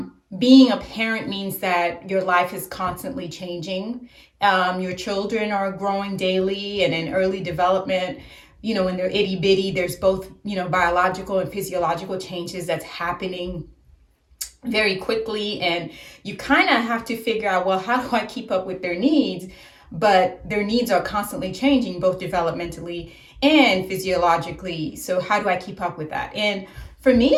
Being a parent means that your life is constantly changing. Your children are growing daily and in early development. When they're itty bitty, there's both, biological and physiological changes that's happening very quickly, and you kind of have to figure out, well, how do I keep up with their needs? But their needs are constantly changing, both developmentally and physiologically. So how do I keep up with that? And for me,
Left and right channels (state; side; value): identical; both; correlation 1.00